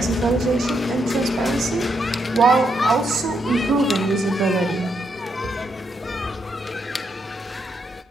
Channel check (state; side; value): normal; both; correlation 0.78